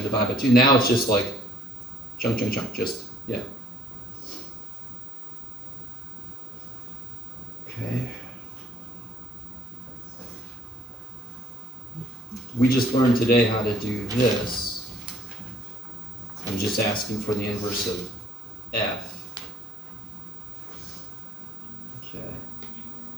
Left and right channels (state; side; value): normal; both; correlation 0.58